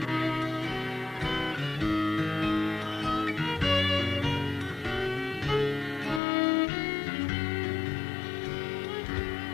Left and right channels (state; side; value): drops out; right; at 6.2 s